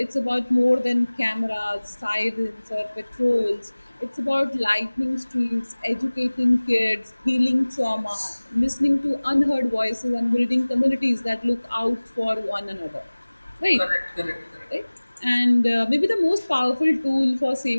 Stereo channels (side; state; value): both; inverted; correlation -1.00